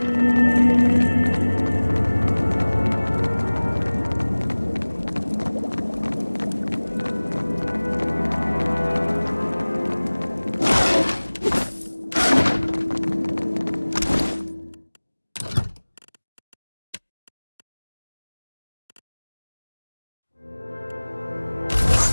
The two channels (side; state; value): both; inverted; correlation -1.00